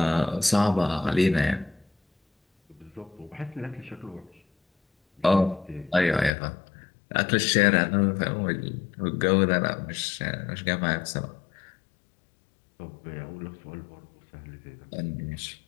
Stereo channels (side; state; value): right; drops out; at 6.3 s